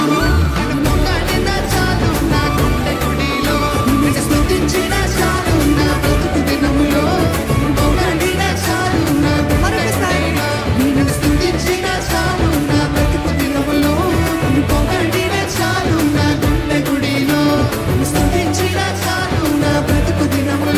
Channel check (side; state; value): both; identical; correlation 1.00